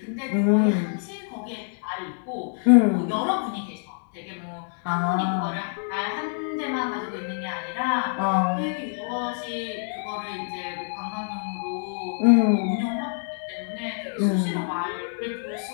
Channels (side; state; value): right; silent; digital silence